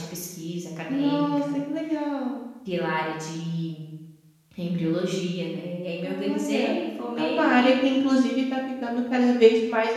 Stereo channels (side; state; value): both; identical; correlation 1.00